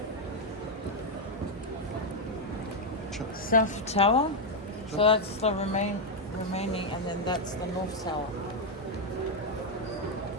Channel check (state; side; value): normal; both; correlation 0.02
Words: South Tower. So that's the remaining, and then that's the North Tower.